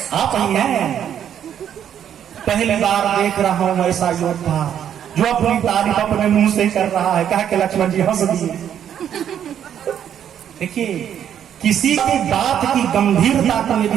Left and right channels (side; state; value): left; quieter; 9.5 dB